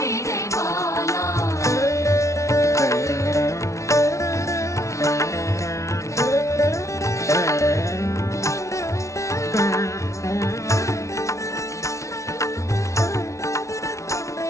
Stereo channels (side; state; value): right; late; 0.14 ms